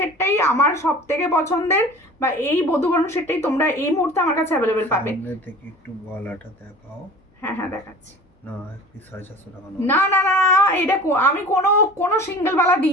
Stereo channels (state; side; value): normal; both; correlation 0.41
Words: আমার সব থেকে পছন্দের, বা এই বধূবরণ সেটটাই তোমরা এই মুহূর্তে আমার কাছে অ্যাভেলেবেল পাবে। একটু গলাটা দেখাও। হ্যাঁ দেখাচ্ছি। না একটু 450 টাকা না না না, এটা আমি কোনো সিঙ্গেল বালা